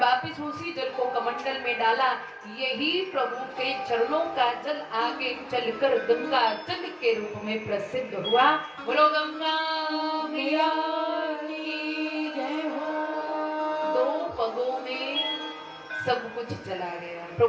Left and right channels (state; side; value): identical; both; correlation 1.00